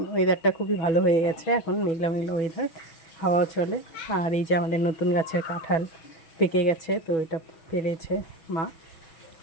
ওয়েদারটা খুবই ভালো হয়ে গেছে, এখন মেঘলা মেঘলা ওয়েদার, হাওয়াও চলে। আর এই যে আমাদের নতুন গাছের কাঁঠাল পেকে গেছে, তো এটা পেরেছে মা,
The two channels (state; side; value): late; right; 6.2 ms